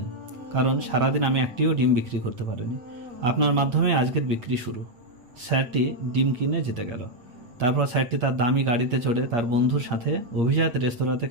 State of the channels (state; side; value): late; left; 8.6 ms